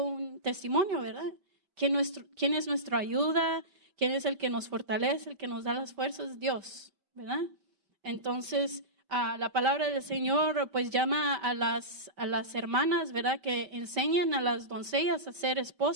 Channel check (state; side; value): late; left; 5.2 ms